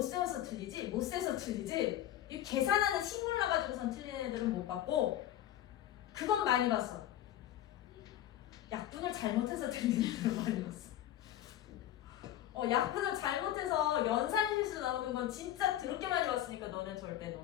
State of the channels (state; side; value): quieter; right; 12.5 dB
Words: 세워서 틀리지, 못 세서 틀리지. 이 계산하는 식물 나가지고선 틀린 애들은 못 봤고, 그건 많이 봤어. 약분을 잘못해서 틀린 애들은 많이 봤어. 약분을 잘못해서 연산실수 나오는 건 진짜 더럽게 많이 봤으니까 너네 절대